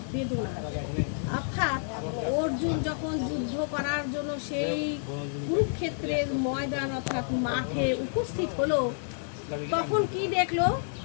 বেদনা। অর্থাৎ অর্জুন যখন যুদ্ধ করার জন্য সেই কুরুক্ষেত্রের ময়দান অর্থাৎ মাঠে উপস্থিত হলো, তখন কি দেখলো?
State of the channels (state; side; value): silent; right; digital silence